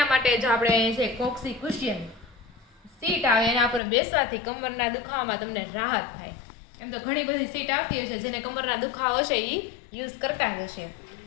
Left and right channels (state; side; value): drops out; right; at 3.8 s